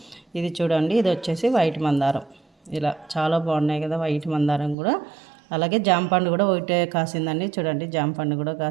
ఇది చూడండి, ఇది వచ్చేసి వైట్ మందారం. ఇలా చాలా బాగున్నాయి కదా వైట్ మందారం కూడా. అలాగే జాంపండు కూడా ఒకటే కాసిందండి. చూడండి, జాంపండు కూడా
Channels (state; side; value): drops out; left; at 4.8 s